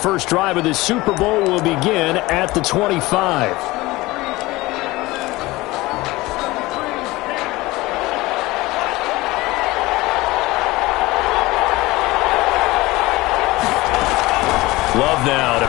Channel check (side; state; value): right; quieter; 20.2 dB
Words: drive of this Super Bowl will begin at the 25. Love now to